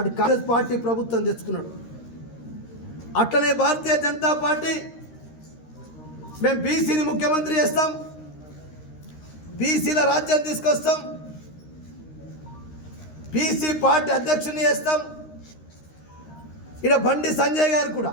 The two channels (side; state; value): right; late; 13 ms